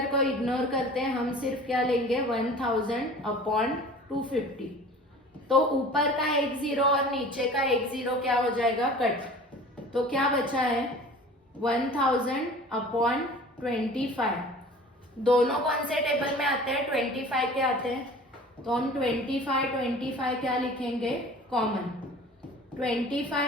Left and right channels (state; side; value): normal; both; correlation 0.43